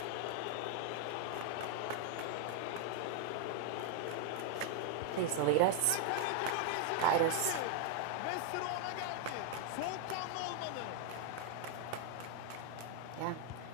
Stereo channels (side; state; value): both; different; correlation 0.00